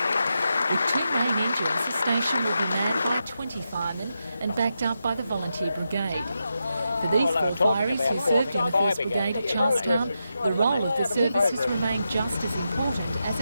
With 2 main engines, the station will be manned by 20 firemen and backed up by the Volunteer Brigade. For these 4 fireys who served in the 1st Brigade at Charlestown, the role of the service has remained just as important as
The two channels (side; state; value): both; inverted; correlation -0.87